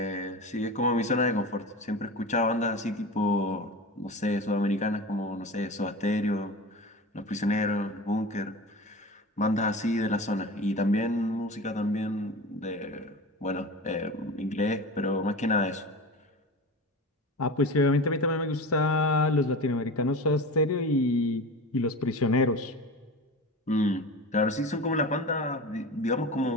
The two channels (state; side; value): normal; both; correlation 0.30